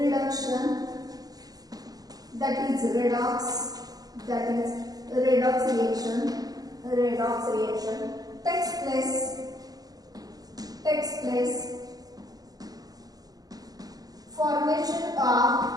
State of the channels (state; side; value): late; left; 0.18 ms